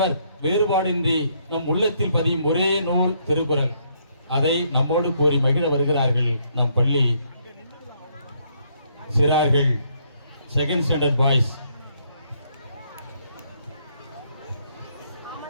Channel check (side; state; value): both; inverted; correlation -0.71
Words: வேறுபாடின்றி நம் உள்ளத்தில் பதியும் ஒரே நூல் திருக்குறள். அதை நம்மோடு கூறி மகிழ வருகிறார்கள் நம் பள்ளி சிறார்கள், செகண்ட் ஸ்டாண்டர்ட் பாய்ஸ்.